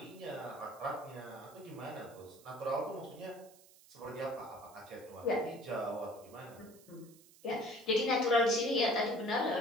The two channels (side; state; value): right; noise; hiss, 24 dB below the sound